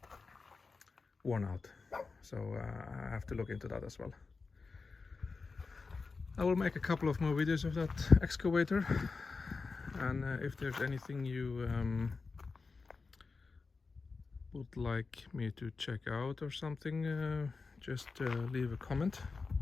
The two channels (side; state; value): right; quieter; 4.3 dB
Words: worn out, so I have to look into that as well. I will make a couple of more videos of that excavator, and if there's anything you would like me to check out or something, just leave a comment.